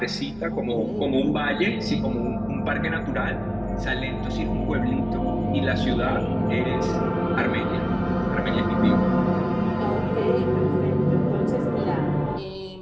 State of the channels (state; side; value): noise; left; rumble, 24 dB below the sound